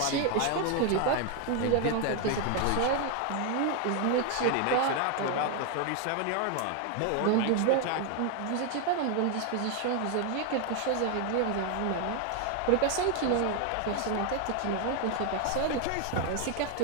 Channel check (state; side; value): different; both; correlation 0.01